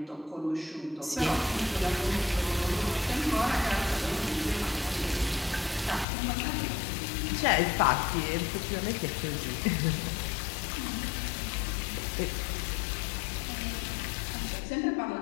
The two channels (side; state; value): right; drops out; at 6.1 s